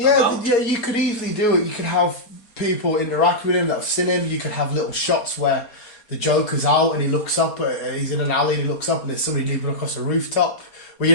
Yeah, you could easily do it. You could have people interact with him that have seen him. You could have little shots where the Joker's out and he looks up, he's in an alley and he looks up and there's somebody leaping across a rooftop, where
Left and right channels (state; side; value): late; right; 4.2 ms